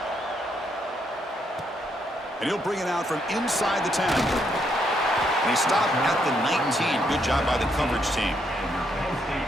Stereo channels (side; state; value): both; normal; correlation 0.75